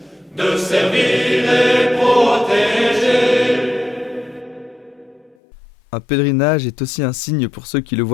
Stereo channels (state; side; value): drops out; right; at 5.4 s